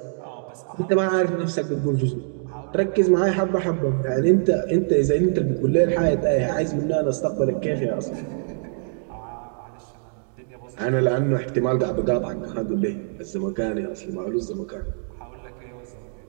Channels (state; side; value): silent; left; digital silence